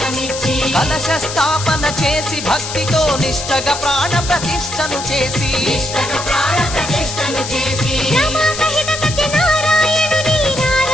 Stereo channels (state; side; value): noise; left; hiss, 7 dB below the sound